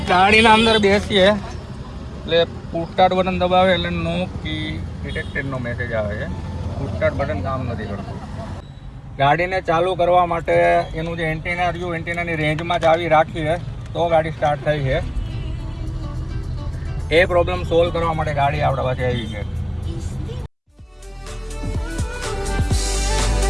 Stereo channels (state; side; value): identical; both; correlation 1.00